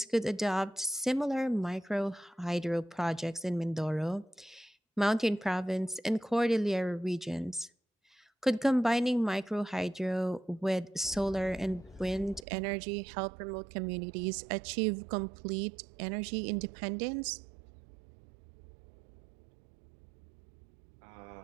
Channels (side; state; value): left; drops out; at 12.5 s